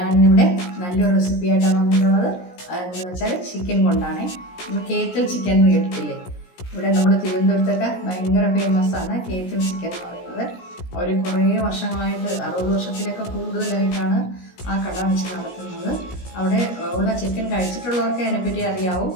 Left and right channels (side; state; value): right; late; 17 ms